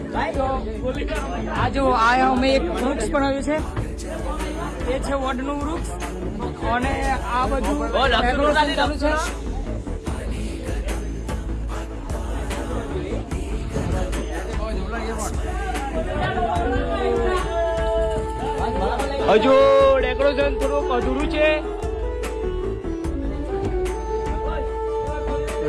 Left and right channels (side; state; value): both; identical; correlation 1.00